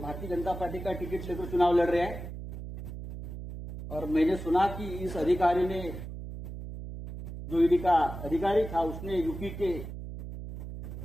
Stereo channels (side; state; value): right; noise; hum, 9 dB below the sound